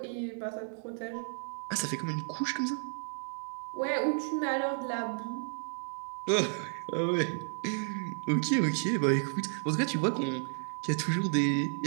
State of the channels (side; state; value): left; silent; 56 dB below the other